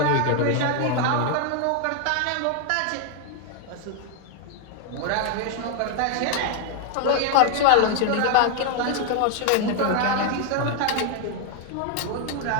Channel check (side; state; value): both; different; correlation 0.00